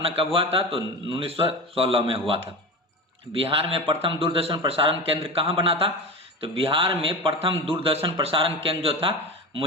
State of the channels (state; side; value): normal; both; correlation 0.26